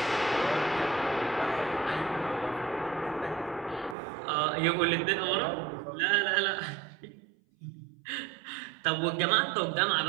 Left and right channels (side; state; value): left; drops out; at 4.0 s